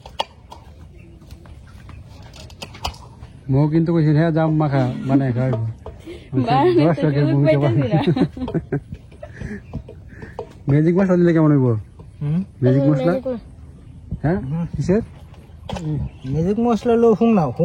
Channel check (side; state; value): both; identical; correlation 1.00